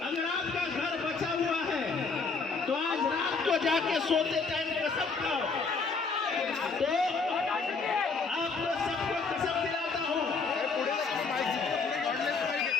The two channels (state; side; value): quieter; right; 4.6 dB